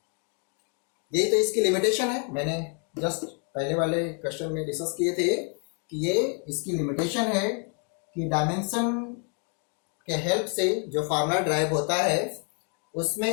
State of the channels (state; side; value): quieter; right; 38.9 dB